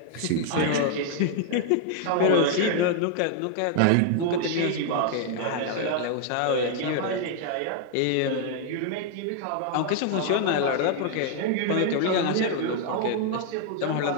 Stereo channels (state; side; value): different; both; correlation 0.00